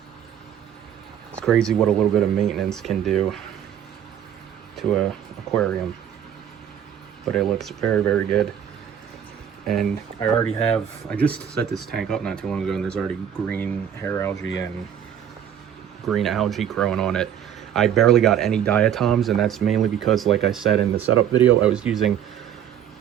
It's crazy what a little bit of maintenance can do to a aquarium. But it looks very, very good. And I just set this tank up not too long ago, and there's already green hair algae and green algae growing on it. I barely got any diatoms, and that's mainly because, like I said in the setup video, I was using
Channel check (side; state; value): left; quieter; 9.4 dB